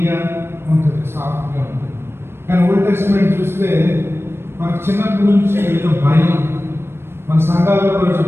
ఉంటుంది, సాఫ్ట్గా ఉంటుంది. కానీ ఓల్డ్ టెస్ట్మెంట్ చూస్తే మనకు చిన్నప్పటి నుంచి ఏదో భయం. మన సంఘాల్లో కూడా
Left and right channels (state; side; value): late; left; 0.12 ms